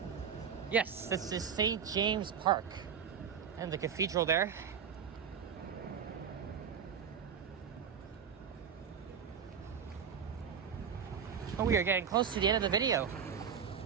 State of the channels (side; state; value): left; quieter; 7.3 dB